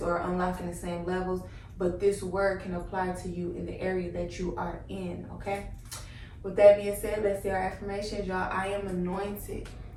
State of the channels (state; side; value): identical; both; correlation 1.00